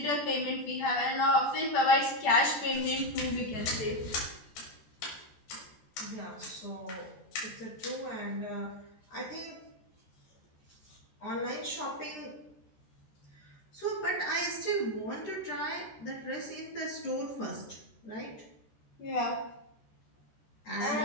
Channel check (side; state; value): right; late; 14 ms